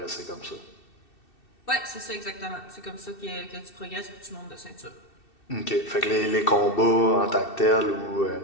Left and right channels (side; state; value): right; late; 2.6 ms